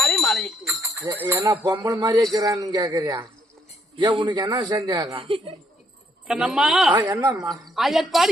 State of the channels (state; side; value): normal; both; correlation 0.71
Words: மாலையிட்டேன். ஏன்னா பொம்பளை மாதிரியே இருக்கிறான்னு கேக்குறியா? ஏன் உனக்கு என்ன செஞ்சாங்க? கண்ணம்மா என்னம்மா?